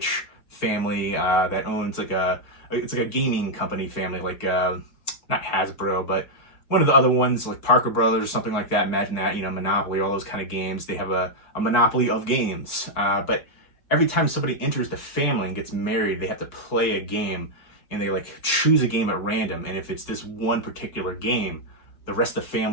family that owns it's like a gaming company family, not Hasbro, but one of the other ones, like Parker Brothers or something like that. Imagine that, Monopoly, all those kind of games. They have a monopoly of games. But every time somebody enters the family and gets married, they have to play a game, and they like choose a game at random. And if it's this one particular game, the rest of the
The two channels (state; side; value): late; right; 4.6 ms